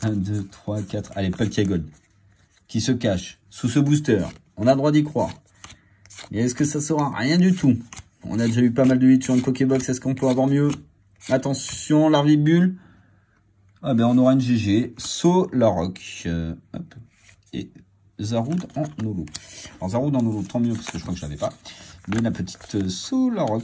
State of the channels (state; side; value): identical; both; correlation 1.00